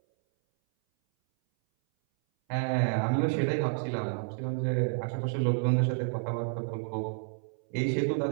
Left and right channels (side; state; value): left; silent; 58 dB below the other